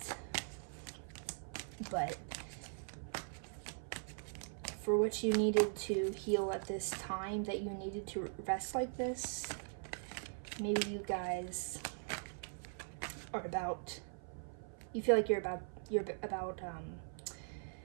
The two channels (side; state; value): left; silent; 50 dB below the other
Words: but for what you needed to heal at this time, that you needed to rest like this, maybe you guys are about, you feel like you're about